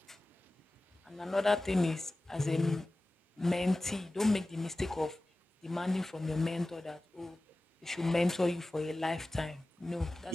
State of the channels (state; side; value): normal; both; correlation 0.96